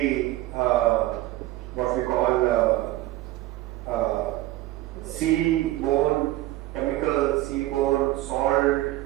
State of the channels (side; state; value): left; quieter; 16.8 dB